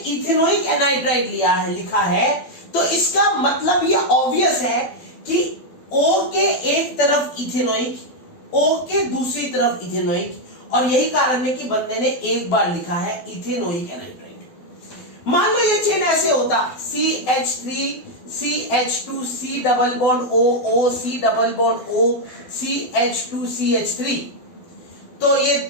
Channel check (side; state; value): right; late; 12 ms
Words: एनहाइड्राइड लिया है, लिखा है, तो इसका मतलब ये ऑब्वियस है कि O के एक तरफ इथेनोइक, O के दूसरी तरफ इथेनोइक, और यही कारण है कि बंदे ने एक बार लिखा है इथेनोइक एनहाइड्राइड। मान लो ये चेन ऐसे होता CH3 CH2 C double bond O C double bond O CH2 CH3, तो ये